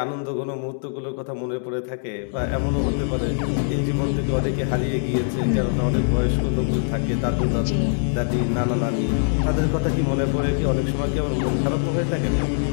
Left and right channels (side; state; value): right; silent; digital silence